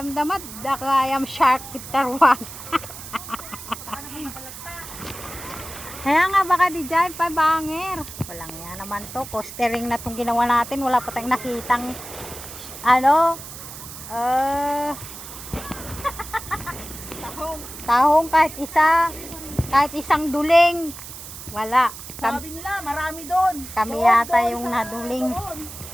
dakayam shark kitarwan. Kaya nga baka di dyan pa banger. Walang yan naman to, costering na tong ginawa natin, wala pa tayong nakitang ano tahong kahit isang duling wala. Sabi nila, marami doon. Kami yata yung naduling.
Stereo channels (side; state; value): right; noise; hiss, 12 dB below the sound